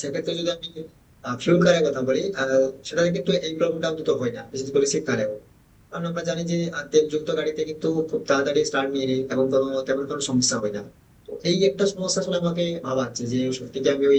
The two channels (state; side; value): identical; both; correlation 1.00